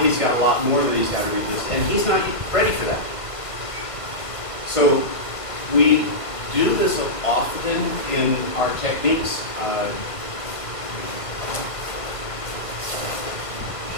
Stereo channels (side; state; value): right; late; 1.5 ms